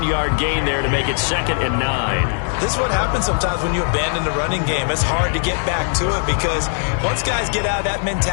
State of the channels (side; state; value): right; silent; 63 dB below the other